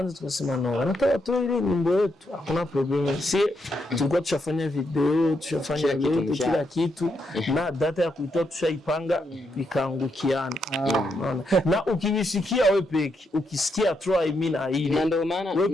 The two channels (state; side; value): normal; both; correlation 0.80